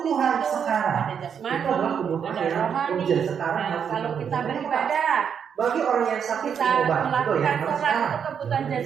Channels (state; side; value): quieter; left; 7.5 dB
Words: sekarang. Ada jasmani, ada rohani. Nah, kalau kita beribadah, bagi orang yang sakit kita obat, melakukan sholat itu kebutuhan